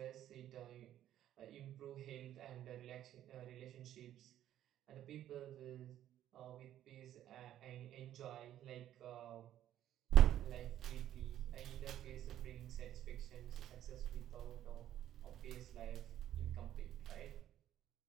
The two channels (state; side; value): quieter; left; 11.9 dB